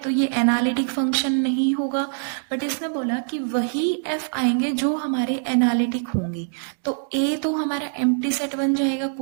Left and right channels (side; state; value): left; silent; digital silence